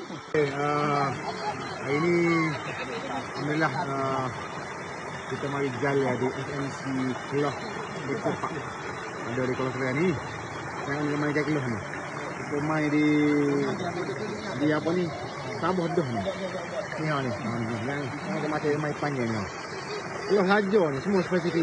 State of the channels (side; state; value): both; identical; correlation 1.00